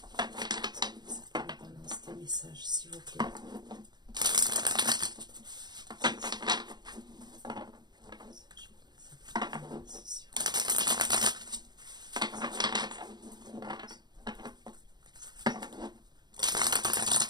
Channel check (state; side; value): late; left; 0.21 ms